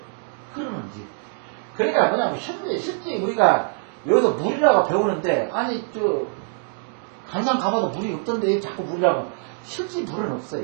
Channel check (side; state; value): left; silent; 56 dB below the other